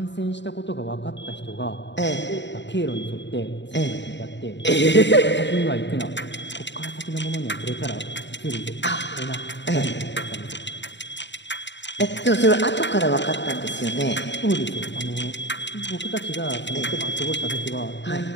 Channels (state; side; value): late; right; 0.52 ms